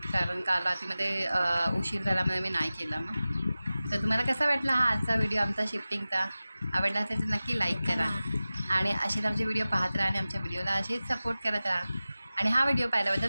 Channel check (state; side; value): inverted; both; correlation -0.97